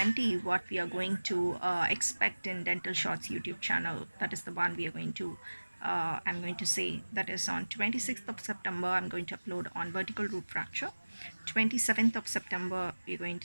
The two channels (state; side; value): inverted; both; correlation -1.00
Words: what we are going to expect in Dental Shots YouTube channel. That is the one we are going to I'm going to say, that is on 26th of September I'm going to upload on vertical root fracture. 27th of September we're going